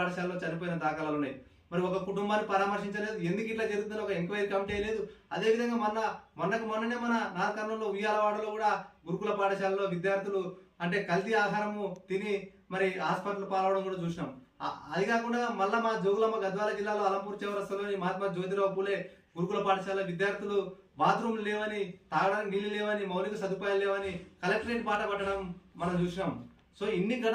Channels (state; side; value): identical; both; correlation 1.00